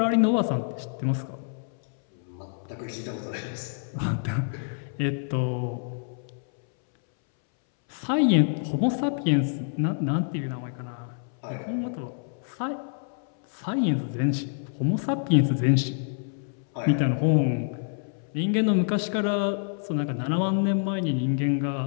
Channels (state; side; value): silent; right; 60 dB below the other